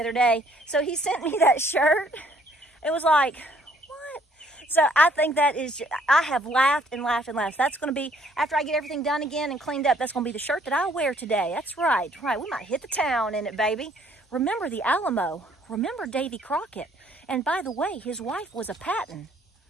day. So he sent me that shirt. It was like, what? So I think that is, I have laughed and laughed and laughed. That's going to be, after I get everything done again and cleaned up, that's going to be the shirt that I wear today. That's right. We might hit the town in it, baby. Remember the Alamo. Remember Davy Crockett. And by the way, his wife was a Patton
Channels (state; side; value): normal; both; correlation 0.62